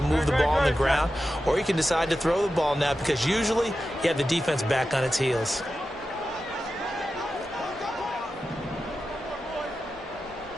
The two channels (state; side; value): normal; both; correlation 0.92